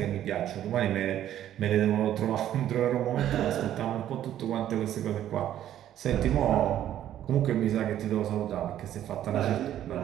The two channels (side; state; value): left; quieter; 11.6 dB